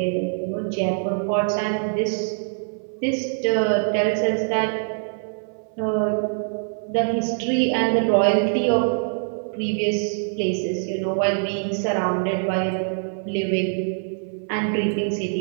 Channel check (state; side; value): silent; left; 63 dB below the other